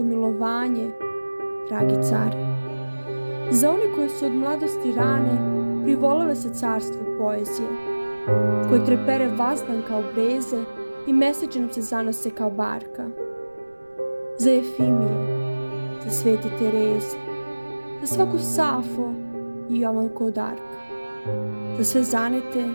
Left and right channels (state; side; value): inverted; both; correlation -1.00